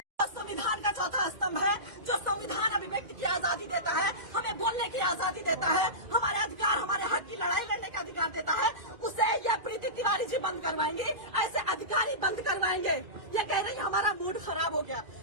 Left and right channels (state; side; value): late; left; 2.4 ms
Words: संविधान का चौथा स्तंभ है, जो संविधान अभिव्यक्ति की आजादी देता है, हमें बोलने की आजादी देता है, हमारे अधिकार, हमारे हक की लड़ाई लड़ने का अधिकार देता है। उसे यह प्रीति तिवारी जी बंद करवाएंगे, ऐसे अधिकारी बंद करवाएंगे। ये कह रही हमारा मूड खराब हो गया।